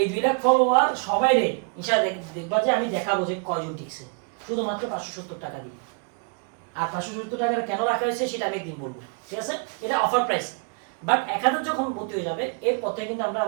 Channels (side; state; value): left; quieter; 37.9 dB